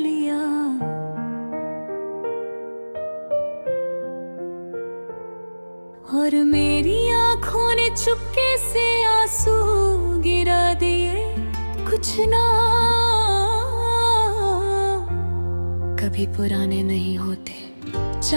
और मेरी आंखों ने चुपके से आंसू गिरा दिए। कुछ ना कभी पुराने नहीं होते,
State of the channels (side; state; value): both; inverted; correlation -1.00